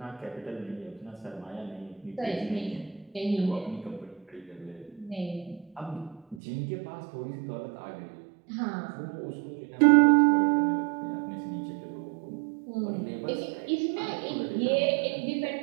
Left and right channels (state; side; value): drops out; left; at 6.4 s